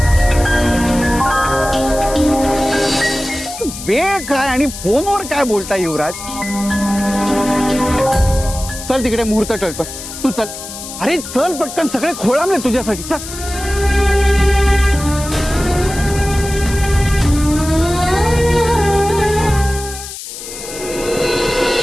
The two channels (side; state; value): left; noise; hiss, 11 dB below the sound